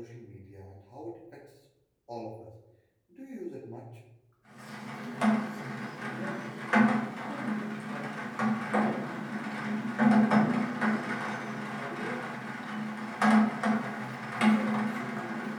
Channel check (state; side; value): identical; both; correlation 1.00